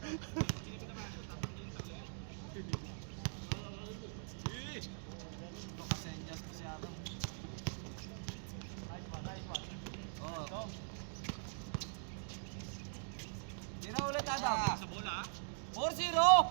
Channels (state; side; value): silent; left; digital silence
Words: Tira ulit Adam. Sa bola. 4-0.